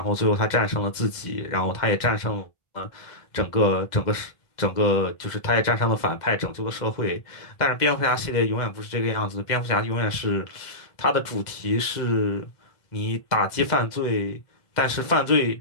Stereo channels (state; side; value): late; right; 2.0 ms